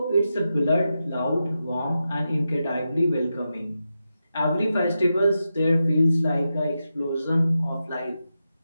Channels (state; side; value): inverted; both; correlation -0.89